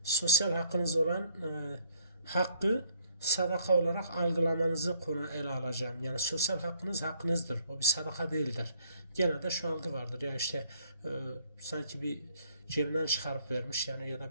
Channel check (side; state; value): both; inverted; correlation -0.64